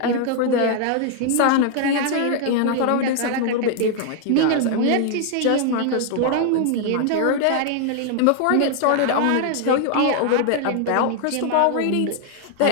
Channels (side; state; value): both; different; correlation 0.00